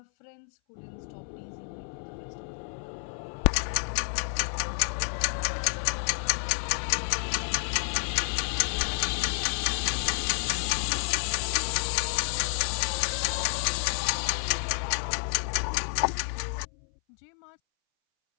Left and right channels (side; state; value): right; silent; 58 dB below the other